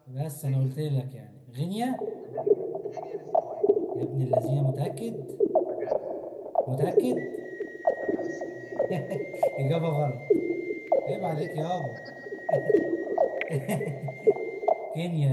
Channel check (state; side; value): identical; both; correlation 1.00